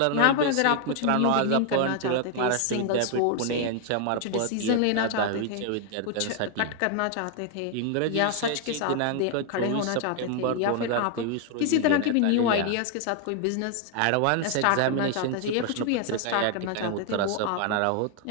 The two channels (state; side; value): different; both; correlation 0.00